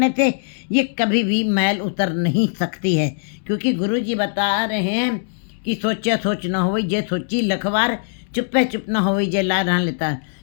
से ये कभी भी मैल उतर नहीं सकती है। क्योंकि गुरु जी बता रहे हैं कि सोचा सोच न होई जे सोची लखवार, चुप्पे चुप न होई जे ला रहा लेता।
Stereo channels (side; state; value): right; silent; digital silence